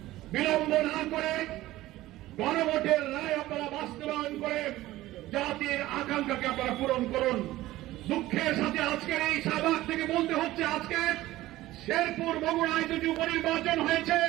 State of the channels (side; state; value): left; quieter; 16.4 dB